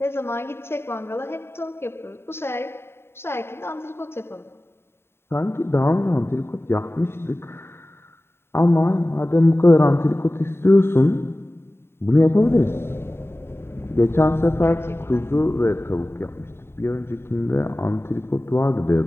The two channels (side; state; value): right; late; 0.12 ms